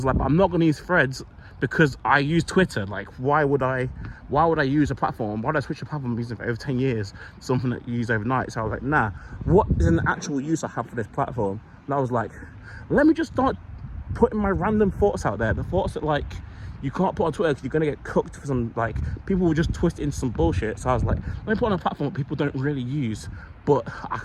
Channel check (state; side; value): identical; both; correlation 1.00